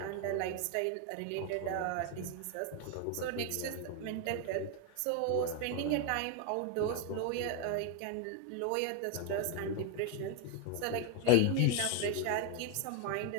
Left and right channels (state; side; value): different; both; correlation 0.01